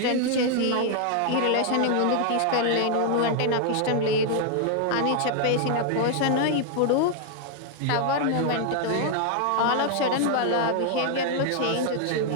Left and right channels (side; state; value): both; different; correlation 0.00